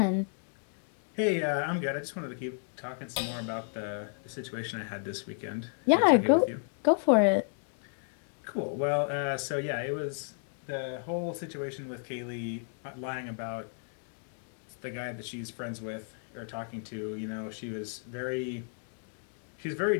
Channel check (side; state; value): right; silent; 56 dB below the other